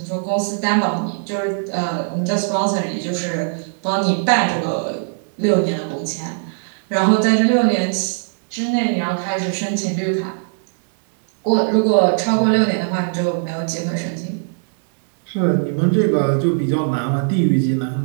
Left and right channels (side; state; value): left; silent; digital silence